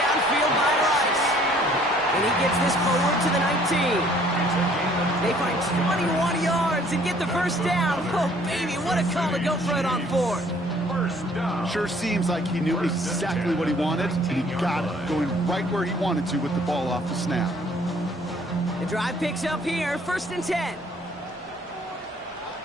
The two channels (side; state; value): both; normal; correlation 0.59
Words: by Rice. And he gets this forward to the 19. They find 21 yards and get the first down. Oh, baby, what a call to go for it on 4th. Sure seems like he knew exactly what he wanted, and he got it, going right where he wanted to with the ball off the snap. The drive picks up here, 1st and 10.